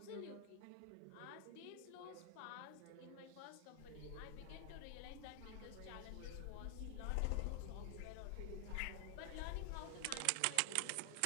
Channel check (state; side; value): different; both; correlation 0.00